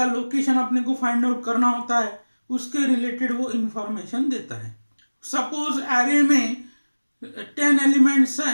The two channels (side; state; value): both; inverted; correlation -1.00